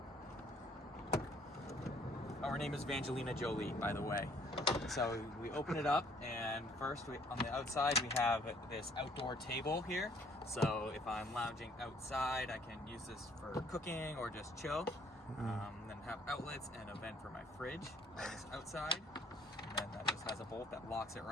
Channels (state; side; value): normal; both; correlation 0.61